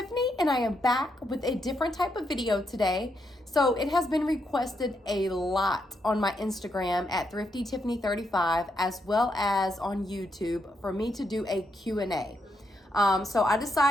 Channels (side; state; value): both; normal; correlation 0.80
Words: and I am back with a different type of video today. So it has been requested a lot on my Instagram at Thrifty Tiffany 35, as well as on YouTube, for me to do a Q&A. So I